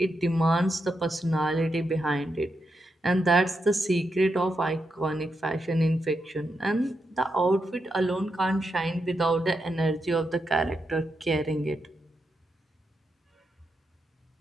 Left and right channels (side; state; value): both; normal; correlation 0.84